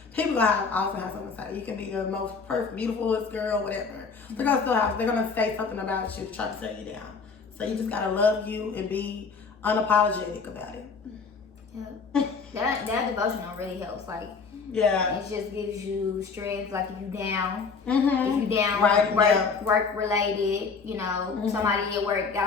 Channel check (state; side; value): quieter; right; 5.1 dB